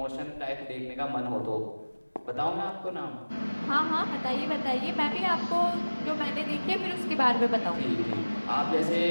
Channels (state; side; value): inverted; both; correlation -1.00